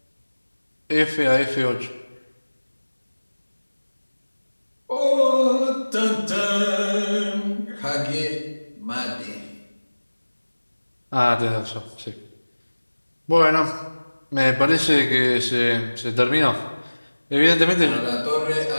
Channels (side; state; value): both; inverted; correlation -1.00